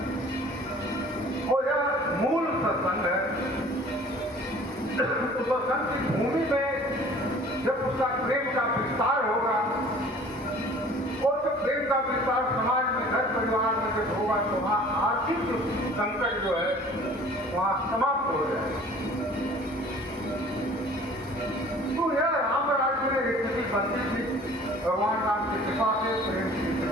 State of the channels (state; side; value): normal; both; correlation 0.49